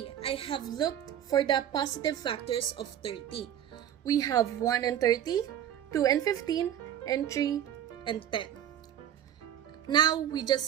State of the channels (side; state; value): left; quieter; 10.4 dB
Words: I have looked for the positive factors of 30. We have 1 and 30, 2 and 15, and 3 and 10. Now, we